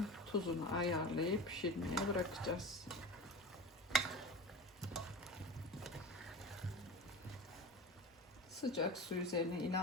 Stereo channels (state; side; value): normal; both; correlation 0.31